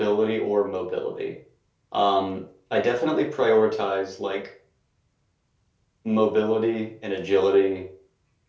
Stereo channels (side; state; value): both; identical; correlation 1.00